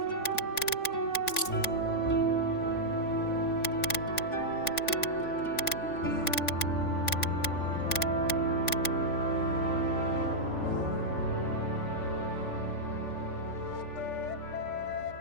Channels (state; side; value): late; right; 3.5 ms